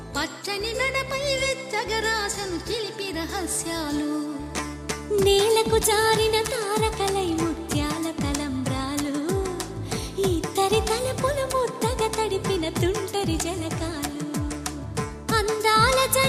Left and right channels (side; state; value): both; identical; correlation 1.00